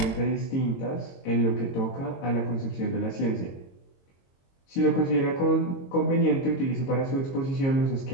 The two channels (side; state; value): right; late; 22 ms